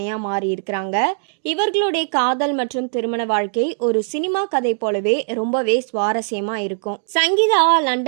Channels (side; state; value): left; silent; digital silence